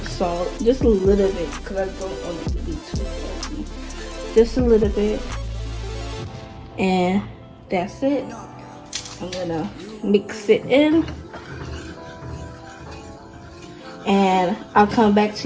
salt, just a little bit, because I don't want it to be too salty. Just a little bit, and that's it. I'm gonna mix it in, and I'll come back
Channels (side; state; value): both; identical; correlation 1.00